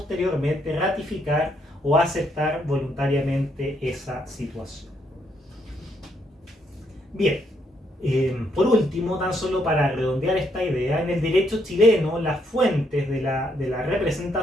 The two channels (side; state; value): both; normal; correlation 0.74